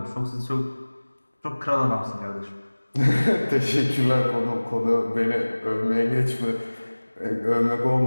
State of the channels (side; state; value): both; inverted; correlation -1.00